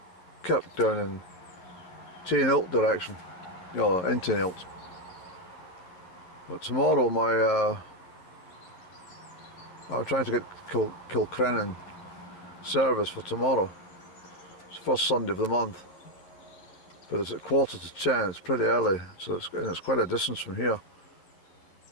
Kirk down in Tainilt direction, you know, in Tainilt. But tomorrow I'm trying to get Kilcrennan service for tomorrow. It's the first Sunday of the month, but it's at 10:15. It's pretty early, so it's quite a distance from here.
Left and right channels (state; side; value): late; right; 11 ms